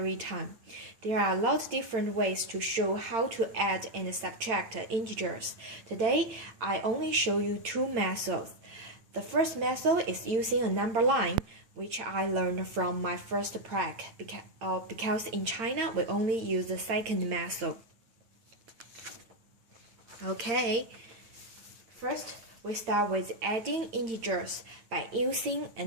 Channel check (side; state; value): left; late; 8.8 ms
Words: time. There are a lot of different ways to show how to add and subtract integers. Today, I only show you two methods. The first method is using a number line, which I learned from my first prac because in China we only use the second method. Okay. First, we start with adding integers by using a